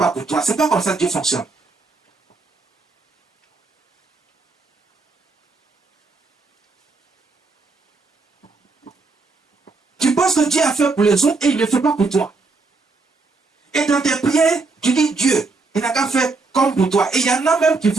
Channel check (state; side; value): quieter; left; 3.8 dB